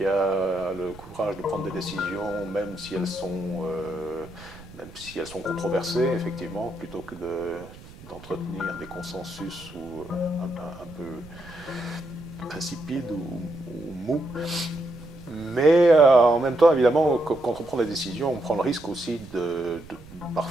a le courage de prendre des décisions, même si elles sont controversées, effectivement, plutôt que d'entretenir des consensus un peu insipides ou mous. Mais en même temps, évidemment, quand on prend des décisions, on prend le risque aussi de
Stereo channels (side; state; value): right; noise; rumble, 18 dB below the sound